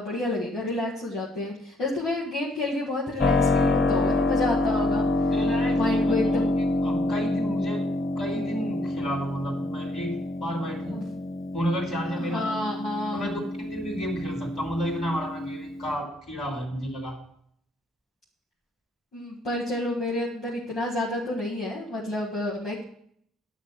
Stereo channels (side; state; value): both; normal; correlation 0.68